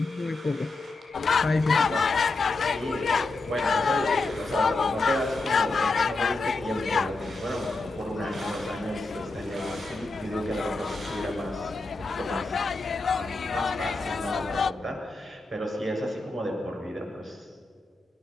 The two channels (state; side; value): quieter; right; 3.4 dB